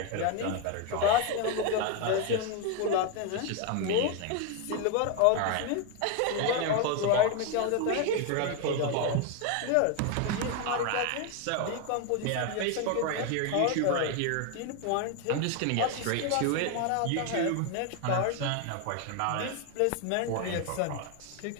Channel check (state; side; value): different; both; correlation 0.01